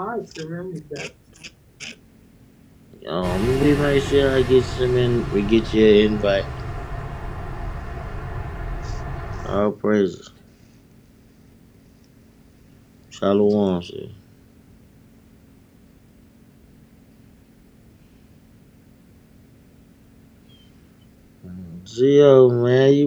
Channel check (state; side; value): identical; both; correlation 1.00